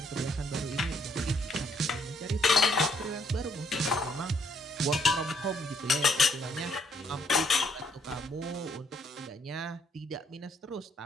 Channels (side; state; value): both; normal; correlation 0.68